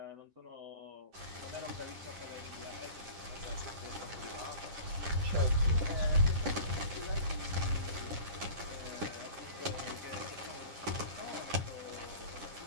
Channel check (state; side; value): late; left; 10 ms